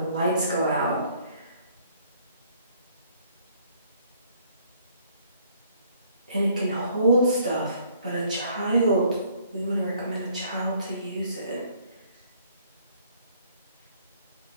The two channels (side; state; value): both; inverted; correlation -0.62